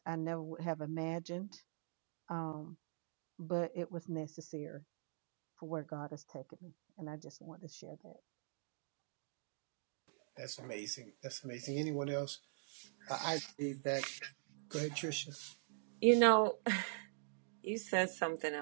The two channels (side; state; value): left; silent; digital silence